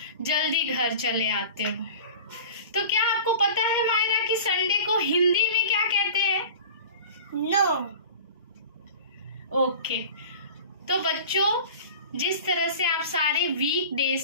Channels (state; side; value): inverted; both; correlation -0.38